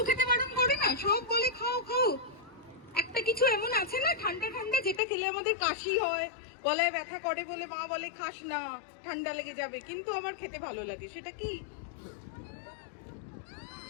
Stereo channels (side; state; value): right; drops out; at 5.0 s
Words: খেতে বারণ করে না, সব বলে খাও খাও। একটা কিছু এমন আছে না ঠান্ডা ঠান্ডা, যেটা খেলে আমাদের কাশি হয়, গলায় ব্যথা করে বলে মা বলে খাস না, ঠান্ডা লেগে যাবে, কিন্তু আমার খেতে ভালো লাগে। সেটা কি